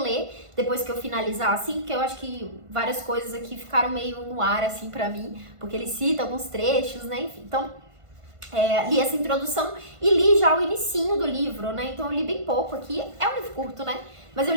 depois que eu finalizar, assim, porque eu acho que várias coisas aqui ficaram meio no ar, assim, pra mim, porque ele cita alguns trechos, né, enfim. Então, li essa introdução e li já o inicinho do livro, né, então eu li bem pouco aqui. É um livro curto, né, mas eu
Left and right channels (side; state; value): left; late; 1.5 ms